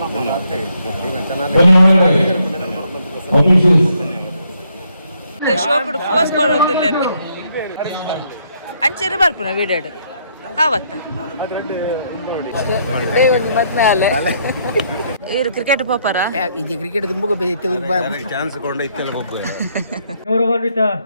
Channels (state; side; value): inverted; both; correlation -0.72